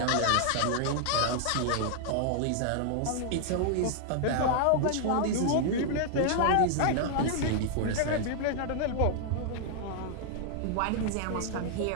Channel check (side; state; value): both; different; correlation 0.00